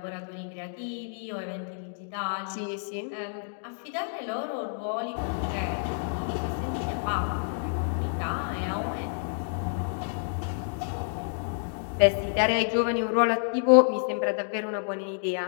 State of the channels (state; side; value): silent; right; digital silence